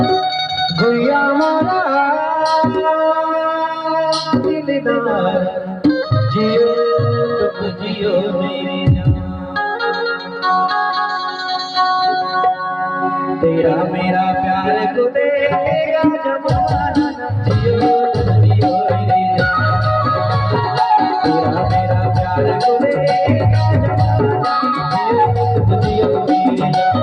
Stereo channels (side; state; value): both; identical; correlation 1.00